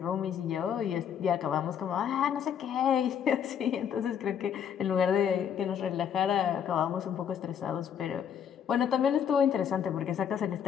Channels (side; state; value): right; quieter; 8.4 dB